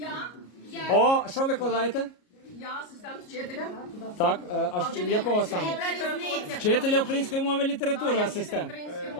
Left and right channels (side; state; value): right; late; 33 ms